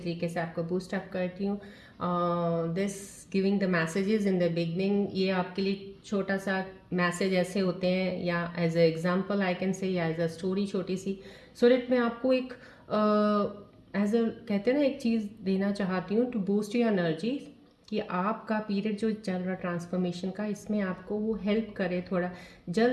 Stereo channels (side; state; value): both; identical; correlation 1.00